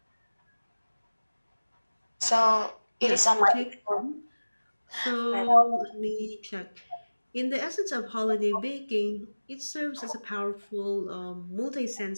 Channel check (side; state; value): both; inverted; correlation -1.00